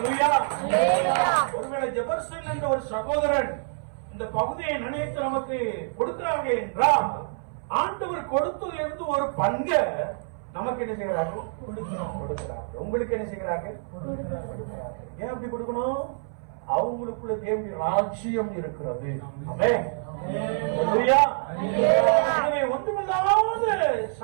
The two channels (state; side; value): silent; left; 61 dB below the other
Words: ஒருவேளை ஜெபர்சன் என்ற ஒரு சகோதரன் இந்த பகுதியை நினைத்து நமக்கு கொடுக்கிறாங்க என்றால், ஆண்டவர் கொடுத்ததிலிருந்து ஒரு பங்கை நமக்கு என்ன செய்கிறார்கள்? கொடுக்கிறார்கள். உங்களுக்கு என்ன செய்கிறார்கள்? கொடுக்கிறார்கள். ஏன் அப்படி கொடுக்கணும்? அவங்களுக்குள்ள தேவனுடைய ராஜ்யம் இருக்கிறது. ஆமென். ஹல்லேலூயா. எனவே ஒன்றுமில்லாத